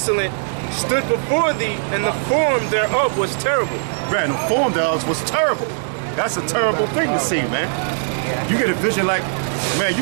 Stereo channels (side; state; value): left; silent; digital silence